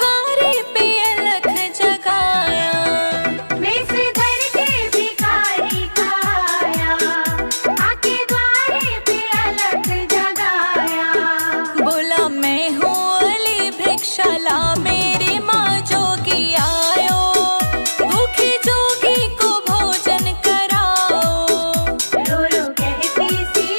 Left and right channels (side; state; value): both; inverted; correlation -1.00